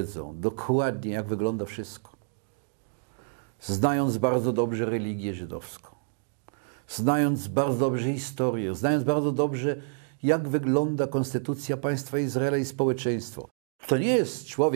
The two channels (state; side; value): silent; left; digital silence